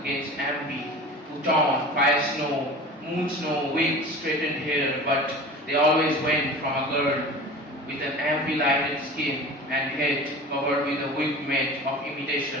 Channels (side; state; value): both; normal; correlation 0.37